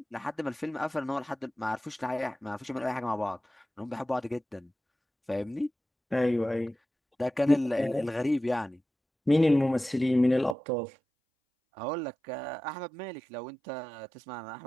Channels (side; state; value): left; drops out; at 10.6 s